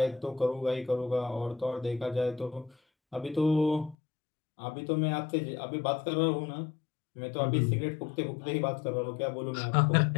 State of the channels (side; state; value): right; drops out; at 4.0 s